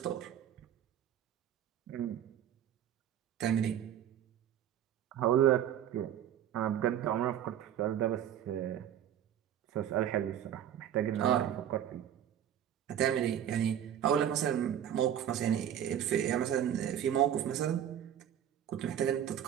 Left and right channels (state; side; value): quieter; left; 10.2 dB